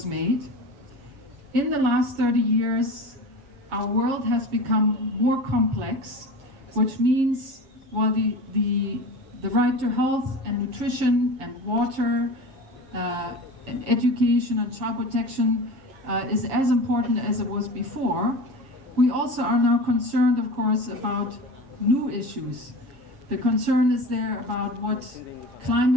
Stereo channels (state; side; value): late; left; 7.4 ms